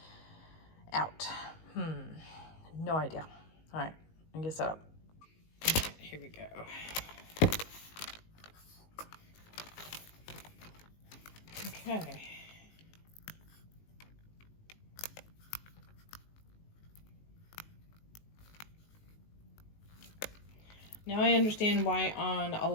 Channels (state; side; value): late; right; 19 ms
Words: out. No idea. All right, let me get set up. Okay, here we go. Okay. Now I understand why on a